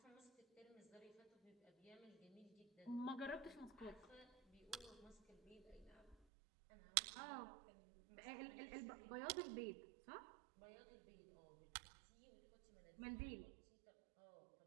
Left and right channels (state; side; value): drops out; left; at 6.2 s